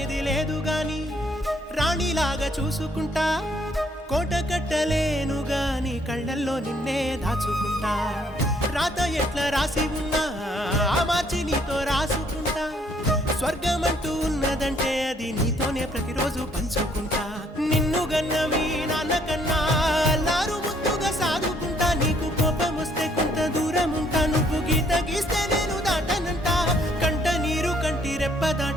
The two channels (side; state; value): both; normal; correlation 0.66